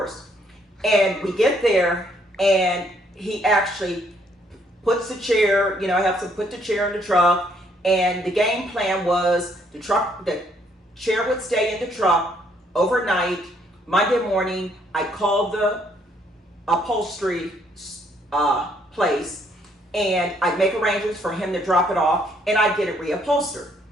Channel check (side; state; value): both; normal; correlation 0.68